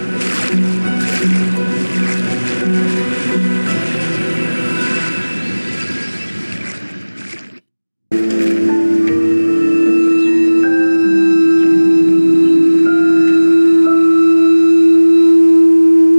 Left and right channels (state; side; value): inverted; both; correlation -1.00